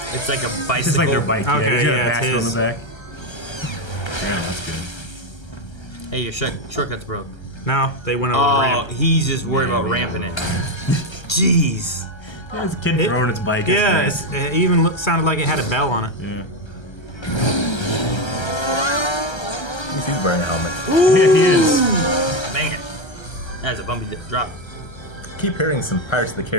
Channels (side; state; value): right; late; 1.3 ms